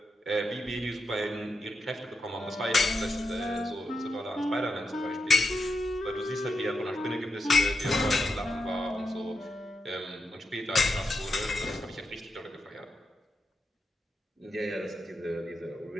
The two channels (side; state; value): both; normal; correlation 0.85